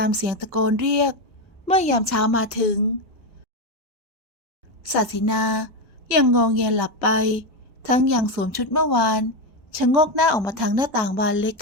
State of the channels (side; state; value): both; normal; correlation 0.11